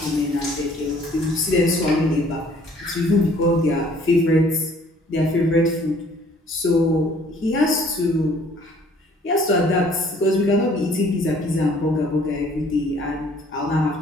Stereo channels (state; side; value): normal; both; correlation 0.57